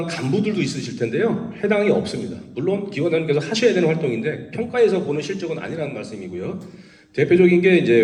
간부들도 있으실 텐데요. 해당이 없습니다. 물론 기관장님께서 하셔야 되는 활동인데 평가에서 보는 실적은 아니라는 말씀이고요. 대표적인 게 이제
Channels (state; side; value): identical; both; correlation 1.00